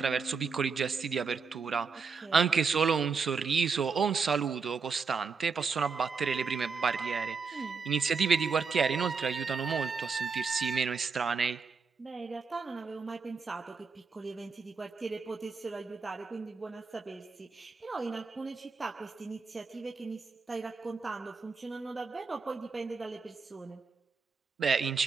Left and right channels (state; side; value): quieter; left; 5.1 dB